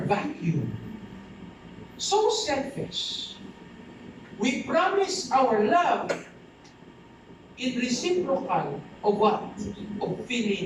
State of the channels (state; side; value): identical; both; correlation 1.00